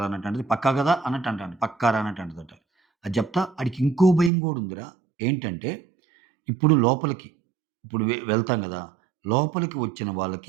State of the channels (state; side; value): drops out; left; at 4.3 s